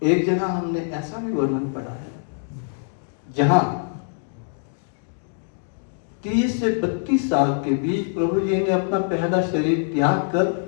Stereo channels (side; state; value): right; silent; digital silence